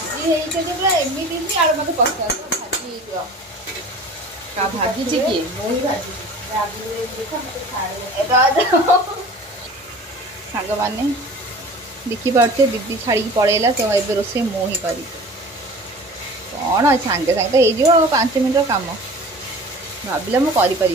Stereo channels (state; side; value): normal; both; correlation 0.41